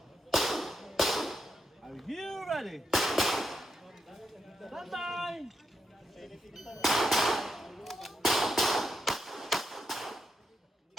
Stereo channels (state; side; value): normal; both; correlation 0.82